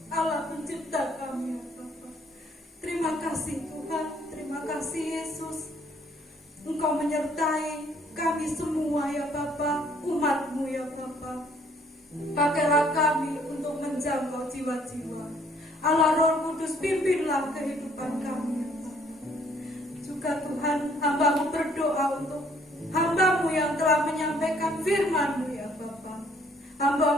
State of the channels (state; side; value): normal; both; correlation 0.62